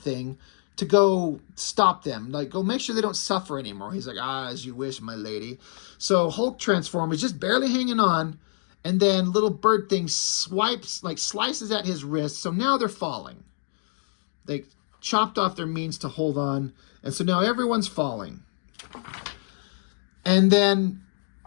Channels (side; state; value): right; silent; digital silence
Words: to go stop them. Like, go make sure they don't suffer anymore. He's like, as you wish, my lady. So Hulk transform is just barely hanging on, and then little bird thing slices at his wrist. So now they're falling. They chopped off their means to hold on, and so now everyone's falling. And then